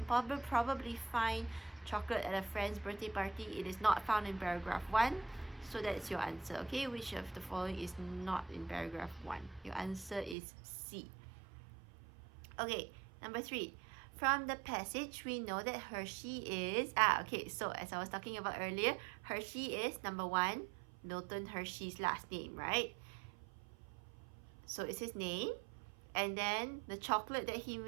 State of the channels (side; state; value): left; drops out; at 10.4 s